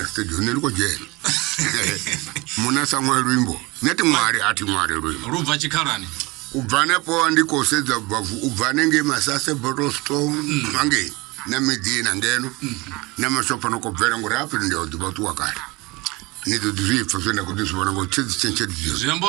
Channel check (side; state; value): left; quieter; 23.7 dB